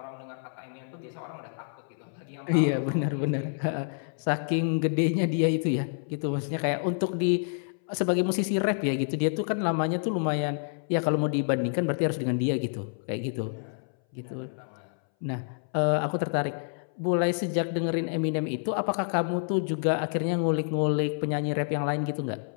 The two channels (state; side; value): silent; right; 59 dB below the other